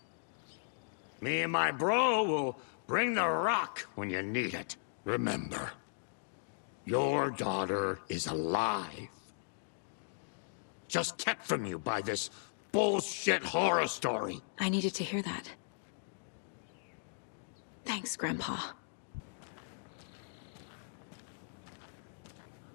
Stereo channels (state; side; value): silent; right; digital silence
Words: Me and my bro will bring the rock when you need it. Remember, your daughter is alive. Just kept from you by this bullshit horror story. I needed to hear that. Thanks, Grandpa.